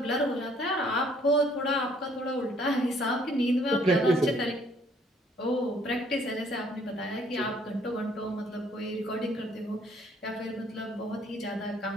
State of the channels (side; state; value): both; normal; correlation 0.62